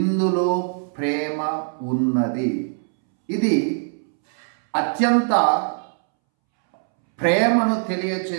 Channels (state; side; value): silent; left; 64 dB below the other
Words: ప్రేమ ఉన్నది. ఇది అత్యంత ప్రేమను